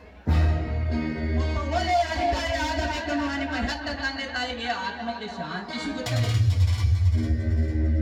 ಒಬ್ಬ ಒಳ್ಳೆಯ ಅಧಿಕಾರಿ ಆಗಬೇಕೆನ್ನುವ ನಿಮ್ಮ ಹೆತ್ತ ತಂದೆ ತಾಯಿಗೆ ಆತ್ಮಕ್ಕೆ ಶಾಂತಿ ಸಿಗುತ್ತದೆ.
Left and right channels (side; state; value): both; identical; correlation 1.00